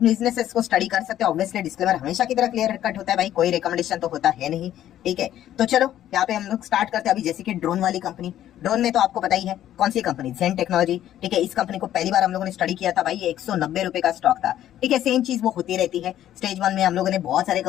को स्टडी कर सकते हो। ऑब्वियसली डिस्क्लेमर हमेशा की तरह क्लियर कट होता है भाई, कोई रिकमेंडेशन तो होता है नहीं। ठीक है, तो चलो यहाँ पे हम लोग स्टार्ट करते हैं। अभी जैसे कि ड्रोन वाली कंपनी, ड्रोन में तो आपको पता ही है कौन सी कंपनी, जेन टेक्नोलॉजी। ठीक है, इस कंपनी को पहली बार हम लोगों ने स्टडी किया था भाई, ये 190 रुपए का स्टॉक था। ठीक है, सेम चीज वो होती रहती है। स्टेज 1 में हम लोगों ने बहुत सारे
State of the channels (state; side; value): quieter; right; 12.0 dB